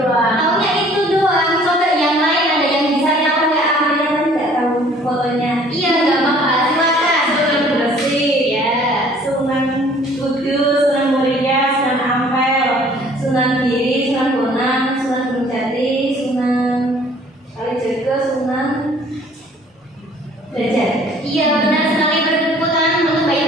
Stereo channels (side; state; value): both; normal; correlation 0.55